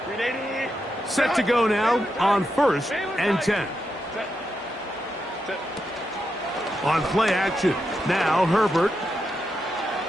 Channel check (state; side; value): normal; both; correlation 0.85